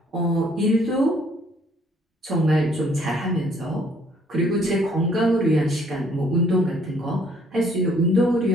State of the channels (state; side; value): normal; both; correlation 0.63